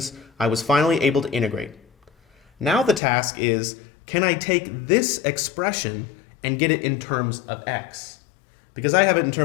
I was finally able to integrate. Now the task is, can I take this expression and get it in terms of x? Because I have it in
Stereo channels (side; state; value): right; drops out; at 3.0 s